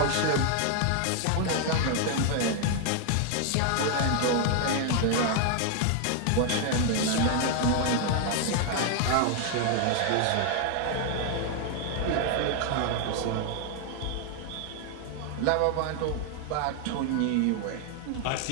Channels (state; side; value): different; both; correlation 0.00